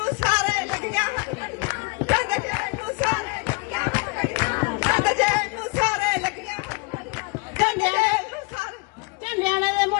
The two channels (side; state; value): right; quieter; 28.4 dB